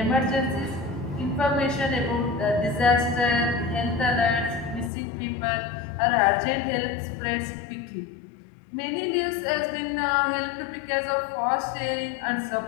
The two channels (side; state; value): right; drops out; at 4.9 s